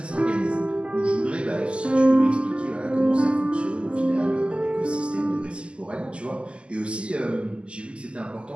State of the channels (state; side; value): late; left; 0.053 ms